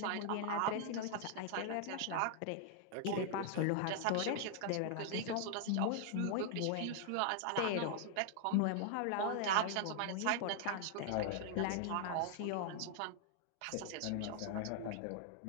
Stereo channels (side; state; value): both; different; correlation 0.00